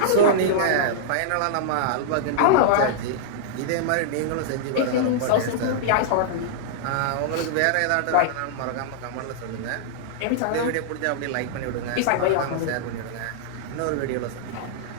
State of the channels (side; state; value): both; different; correlation -0.01